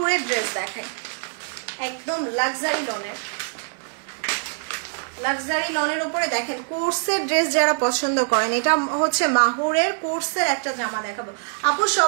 ড্রেস দেখাই, একদম লাক্সারি লনের, লাক্সারি লনের উপরে দেখেন কোর্সের ড্রেস যারা পছন্দ করেন, এটা হচ্ছে মাহুরের কোর্সের একটা জামা দেখাবো। আপু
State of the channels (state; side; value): silent; left; digital silence